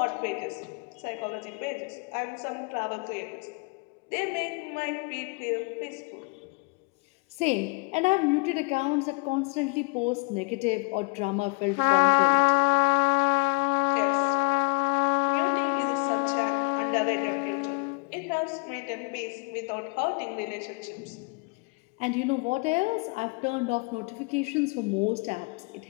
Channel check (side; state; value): right; quieter; 32.5 dB